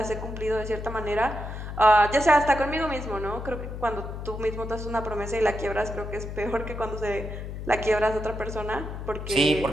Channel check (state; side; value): noise; left; hum, 7 dB below the sound